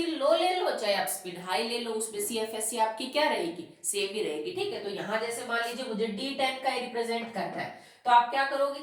लो ले लो, चाहे आप स्पिन हाई ले लो, उसमें CFSC आपकी क्या रहेगी, सेम ही रहेगी। ठीक है, तो यहाँ जैसे मान लीजिए मुझे D10 का रिप्रेजेंट करना है, तो आप क्या करोगे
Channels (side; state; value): both; identical; correlation 1.00